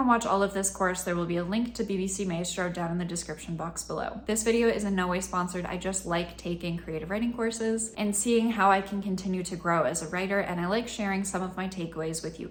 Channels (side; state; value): both; identical; correlation 1.00